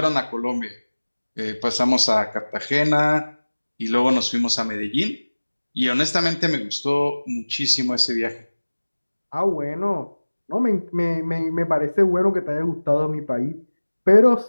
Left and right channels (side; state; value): both; inverted; correlation -1.00